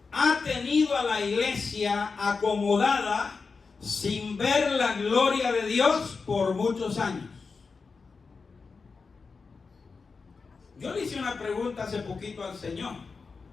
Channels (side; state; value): right; quieter; 4.7 dB